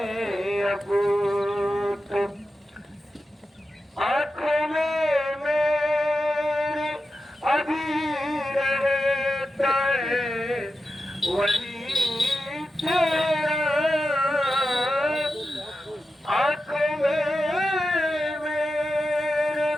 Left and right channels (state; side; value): normal; both; correlation 0.91